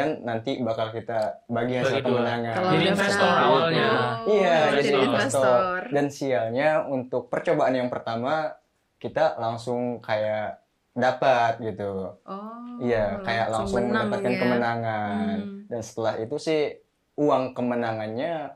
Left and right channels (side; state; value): both; identical; correlation 1.00